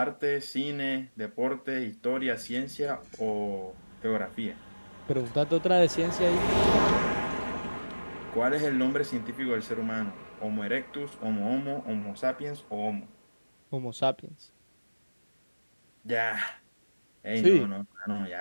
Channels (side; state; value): both; inverted; correlation -1.00